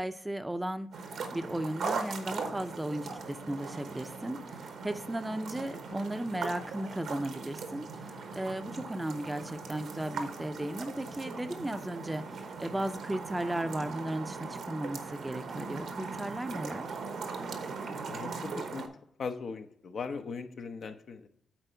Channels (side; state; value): both; normal; correlation 0.90